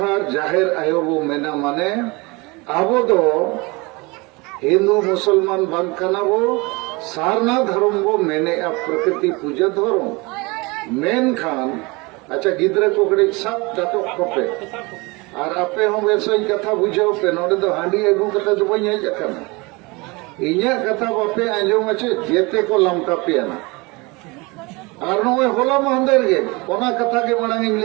जाहेर आयो बो मेना माने आबो दो हिंदू मुसलमान बांकना बो सारना धर्म बो मेने प्रकृति पूजा धर्म मेन खान। अच्छा गिद्रे को कड़े सब डाटो कोपे और आपे हम वैसे कथा बुझाओ पे नोडे दो हांडी अगू कथा दो बई हेज अकना इन्या कथा बापे आंजोम आछे जेते को लमका पेना और नोए होला महंदेर गे ओना कथा के मांग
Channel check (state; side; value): quieter; left; 25.8 dB